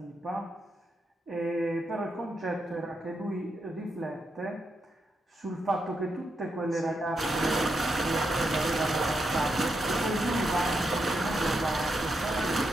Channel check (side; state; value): both; normal; correlation 0.83